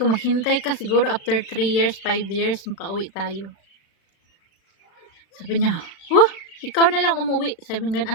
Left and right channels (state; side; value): late; right; 36 ms